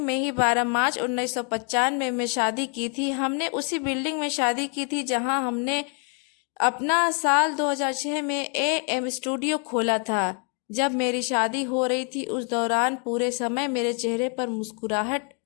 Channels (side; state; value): right; quieter; 39.3 dB